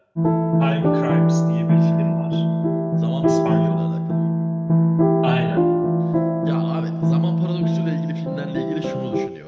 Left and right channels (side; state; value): both; identical; correlation 1.00